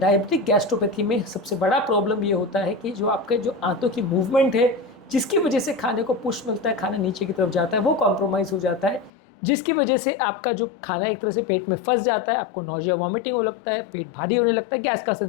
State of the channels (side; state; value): right; drops out; at 9.1 s